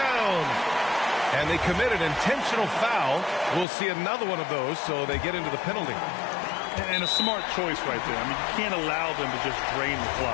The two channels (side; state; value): right; drops out; at 3.7 s